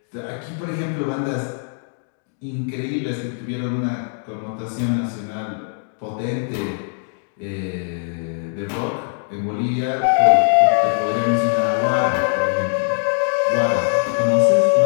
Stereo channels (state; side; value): silent; right; digital silence